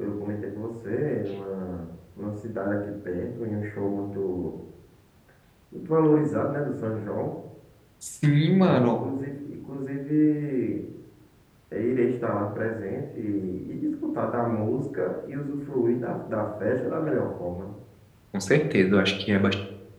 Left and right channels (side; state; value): both; identical; correlation 1.00